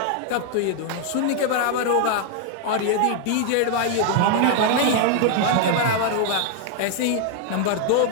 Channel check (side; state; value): both; different; correlation 0.00